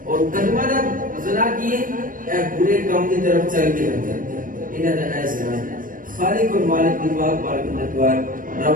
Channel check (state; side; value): late; left; 0.40 ms